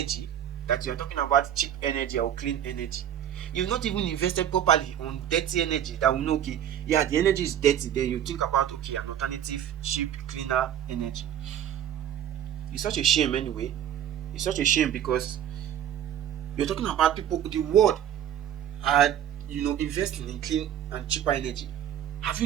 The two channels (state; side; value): quieter; left; 10.3 dB